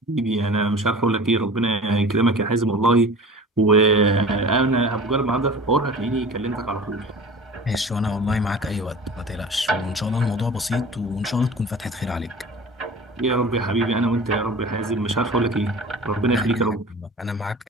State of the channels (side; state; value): both; normal; correlation 0.40